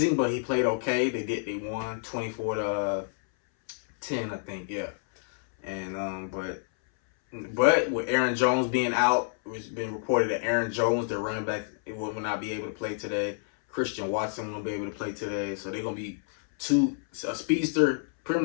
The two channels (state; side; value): silent; right; 59 dB below the other